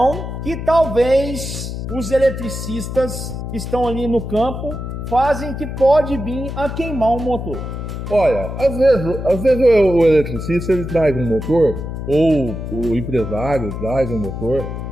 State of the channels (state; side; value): noise; left; hum, 6 dB below the sound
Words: que talvez os eletricistas que estão ali no campo fazem que pode vir a queimar o motor? Olha, às vezes o eletricista ele traz um motor, ou o empresário traz um motor